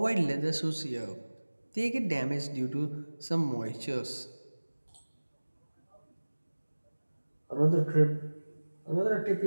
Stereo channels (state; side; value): inverted; both; correlation -1.00